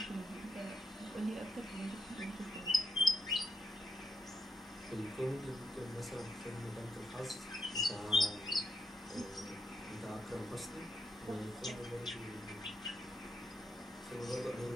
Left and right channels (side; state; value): both; normal; correlation 0.80